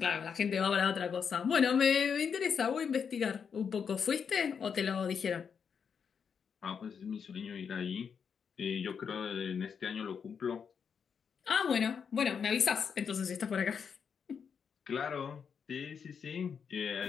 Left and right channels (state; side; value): quieter; right; 6.7 dB